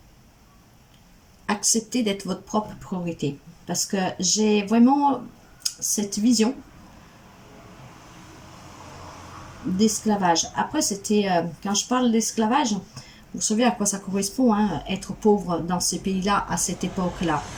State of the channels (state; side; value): identical; both; correlation 1.00